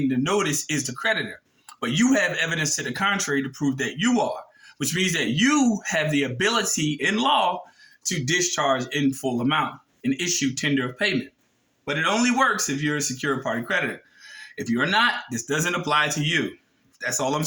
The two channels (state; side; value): identical; both; correlation 1.00